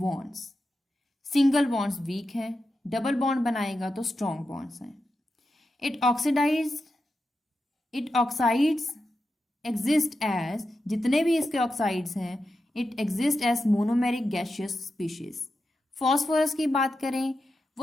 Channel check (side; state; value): both; normal; correlation 0.89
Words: Single bonds weak है, डबल बॉन्ड बनाएगा तो स्ट्रॉन्ग बॉन्ड्स हैं। इट ऑक्साइड्स एग्जिस्ट एज, जितने भी इसके ऑक्साइड्स हैं, it exist as monomeric gaseous species. Phosphorus की बात करें,